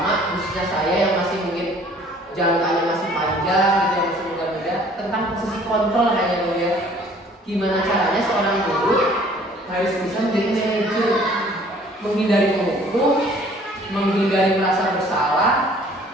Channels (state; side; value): normal; both; correlation 0.55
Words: khususnya saya yang masih mungkin jangkanya masih panjang gitu, yang masih muda-muda, tentang posisi kontrol hanya ya. Gimana caranya seorang guru harus bisa menjadi manajer, menghindari menghukum, menghindari merasa bersalah.